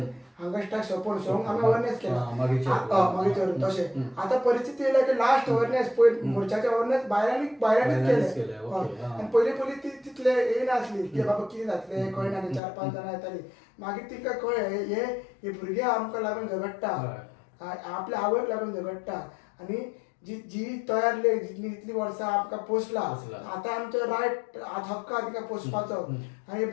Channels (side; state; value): right; drops out; at 12.6 s